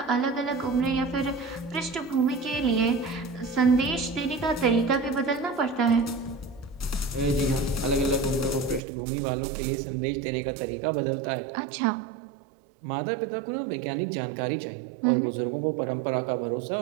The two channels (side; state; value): left; drops out; at 8.8 s